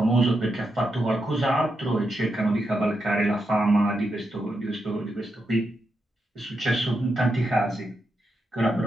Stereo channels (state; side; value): normal; both; correlation 0.84